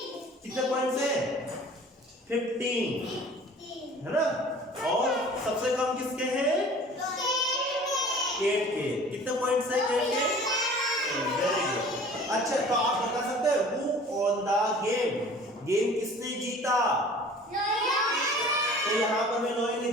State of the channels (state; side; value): normal; both; correlation 0.46